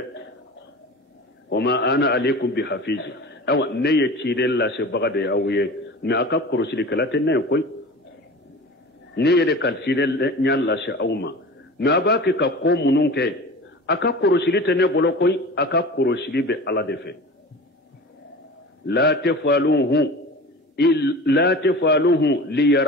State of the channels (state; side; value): normal; both; correlation 0.36